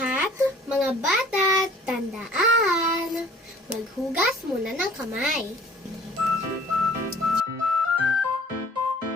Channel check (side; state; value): both; normal; correlation 0.52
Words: mga bata, tandaan, maghugas muna ng kamay.